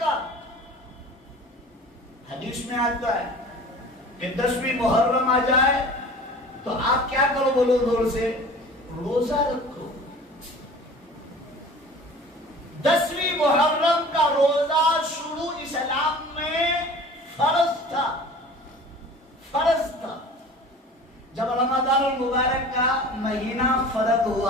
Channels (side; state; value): both; normal; correlation 0.42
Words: حدیث میں آتا ہے کہ 10ویں محرم آ جائے تو آپ کیا کرو؟ بولو زور سے، روزہ رکھو۔ 10ویں محرم کا روزہ شروع اسلام میں فرض تھا، فرض تھا۔ جب رمضان المبارک کا مہینہ فرض